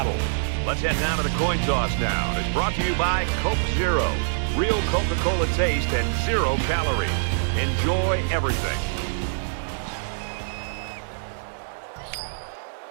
Let's head down to the coin toss now. It's brought to you by Coke Zero. Real Coca-Cola taste and 0 calories. Enjoy everything.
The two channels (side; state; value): left; silent; digital silence